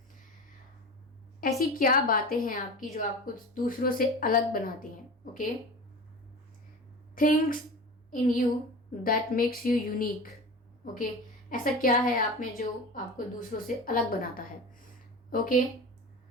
ऐसी क्या बातें हैं आपकी जो आपको दूसरों से अलग बनाती हैं। Okay, things in you that makes you unique. Okay, ऐसा क्या है आप में जो आपको दूसरों से अलग बनाता है। ओके,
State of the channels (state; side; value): normal; both; correlation 0.32